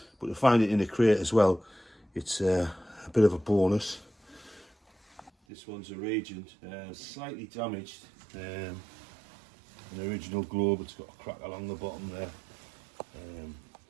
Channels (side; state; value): left; drops out; at 5.3 s